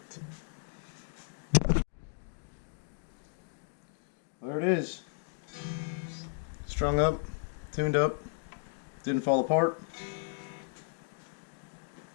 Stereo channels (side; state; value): right; silent; digital silence